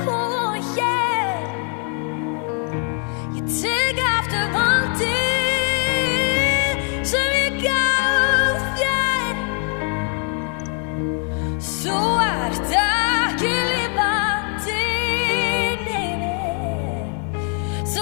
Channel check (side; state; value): right; quieter; 39.1 dB